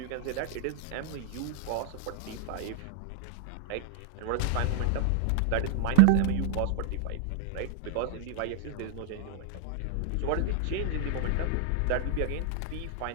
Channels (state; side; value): different; both; correlation -0.01